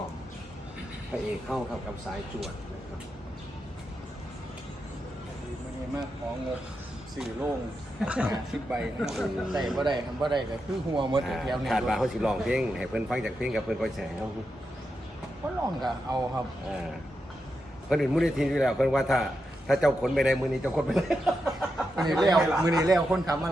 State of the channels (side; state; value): both; normal; correlation 0.87